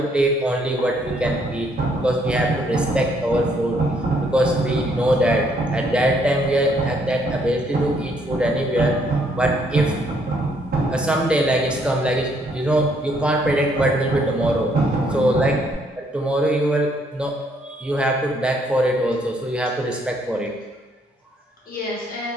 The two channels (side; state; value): both; normal; correlation 0.69